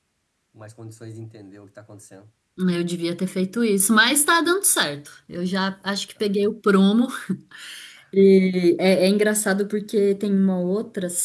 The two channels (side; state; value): both; identical; correlation 1.00